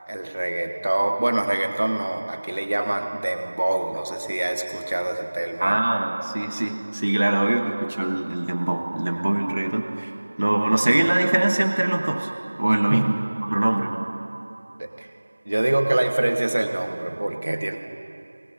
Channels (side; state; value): both; inverted; correlation -1.00